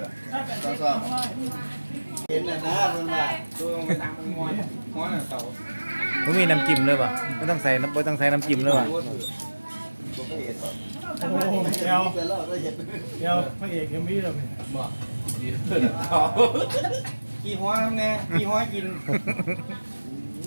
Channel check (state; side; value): inverted; both; correlation -1.00